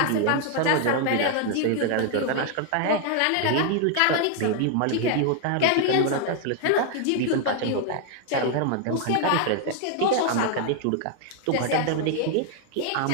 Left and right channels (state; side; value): different; both; correlation 0.00